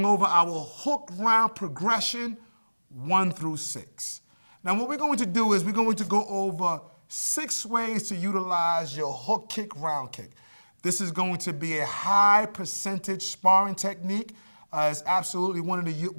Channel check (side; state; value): both; inverted; correlation -1.00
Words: over our hook round progression 1 through 6. Now, what we're going to do is we're going to go over 6 ways to utilize your hook kick, round kick. This is going to be a high percentage sparring technique. It's absolutely one of the